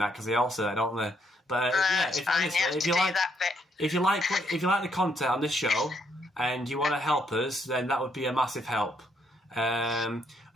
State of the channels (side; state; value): both; normal; correlation 0.73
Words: because they all say that, don't they? But if you like the content on this show and you want to help us, then that would be a massive help. I'm